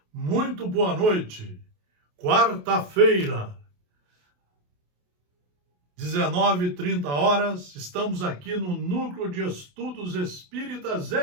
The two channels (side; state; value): left; late; 28 ms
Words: Muito boa noite. Quarta-feira, 19h30, estamos aqui no Núcleo de Estudos Espíritas